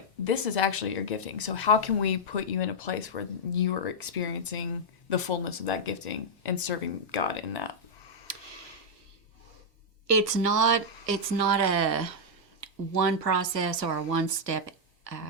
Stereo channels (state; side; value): normal; both; correlation -0.05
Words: this is actually your gifting. So how can we put you in a place where you are experiencing the fullness of that gifting and serving God in that? It's not a one process or a one step